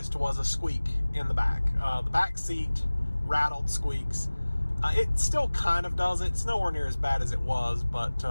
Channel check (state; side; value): inverted; both; correlation -1.00